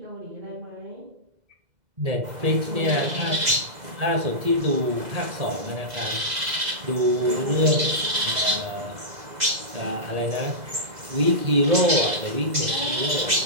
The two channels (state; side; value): late; left; 2.0 ms